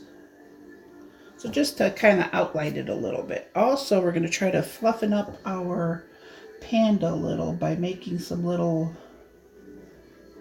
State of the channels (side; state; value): both; identical; correlation 1.00